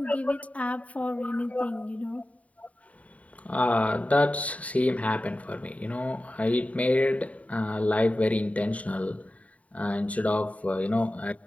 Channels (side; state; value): right; late; 0.068 ms